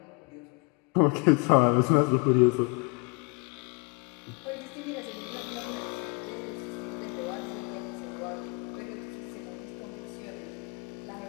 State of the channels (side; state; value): right; quieter; 32.3 dB